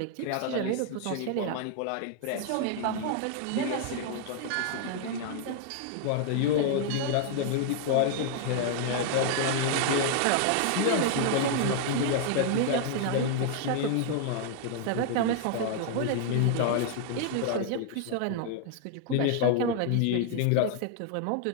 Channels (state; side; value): different; both; correlation 0.00